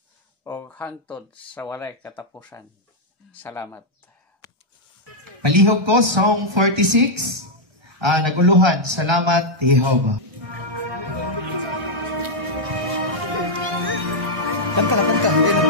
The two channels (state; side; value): late; left; 1.1 ms